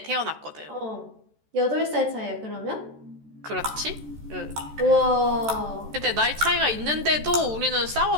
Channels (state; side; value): late; left; 14 ms